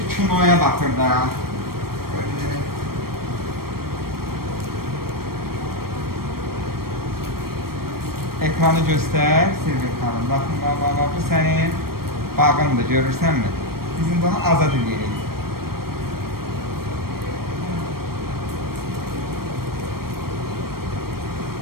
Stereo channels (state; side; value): late; left; 0.94 ms